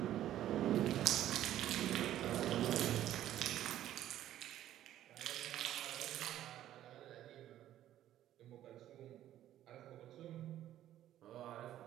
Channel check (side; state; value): left; quieter; 12.5 dB